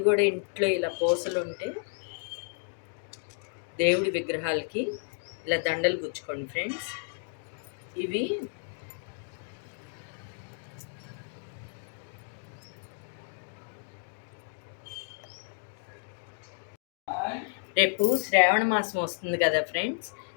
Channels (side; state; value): right; silent; 57 dB below the other